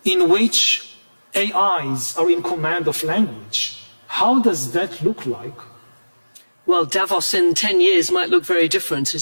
in which AIs are in command of language, how does that look like? Well, Davos in 10 years might look very different,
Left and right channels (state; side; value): inverted; both; correlation -1.00